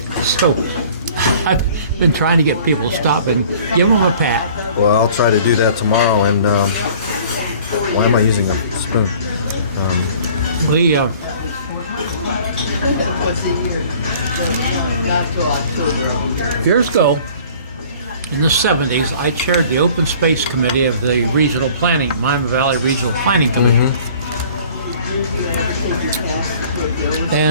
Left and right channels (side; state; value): both; inverted; correlation -0.50